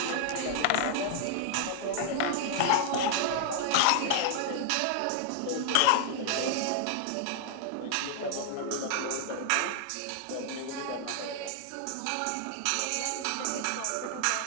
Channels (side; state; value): both; different; correlation 0.00